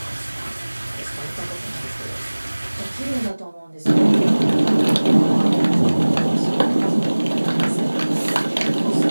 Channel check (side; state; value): both; inverted; correlation -1.00